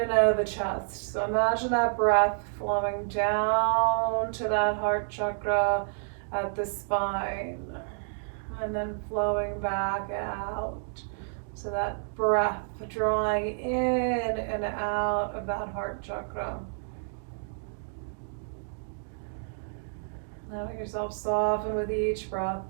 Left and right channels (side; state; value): left; silent; digital silence